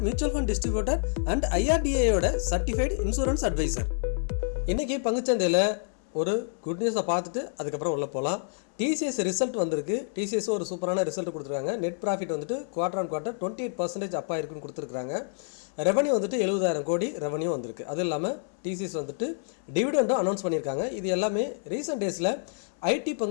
mutual fund distributor and ஐஆர்டிஏயோட சர்டிஃபைடு இன்சூரன்ஸ் அட்வைசர். இன்றைக்கி பங்குச்சந்தையில் ஒரு குட் நியூஸை பார்த்துட்டு அதுக்கப்புறம் உள்ளே போகலாம். டிசிஎஸ் ரிசல்ட் வந்திருக்கு. டிசிஎஸ் ஒரு சூப்பரான ரிசல்ட் கொடுத்துருக்காங்க. நெட் ப்ராஃபிட் வந்துட்டு குவார்டர் ஆன் குவார்டர் 28% அப்பா இருக்குன்னு கொடுத்துருக்காங்க. ரெவன்யூ வந்துட்டு 70,000 கோடி ரெவன்யூ வந்திருக்கு. அது இல்லாமல் டிசிஎஸ் வந்துட்டு டிவிடெண்டும் அனௌன்ஸ் பண்ணியிருக்காங்க. இது எல்லாமே ரீசெண்ட் டேஸில் ஐடி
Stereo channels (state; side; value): silent; right; 59 dB below the other